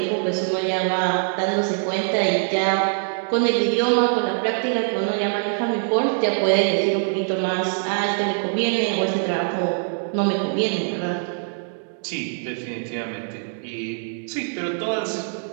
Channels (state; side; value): silent; left; 63 dB below the other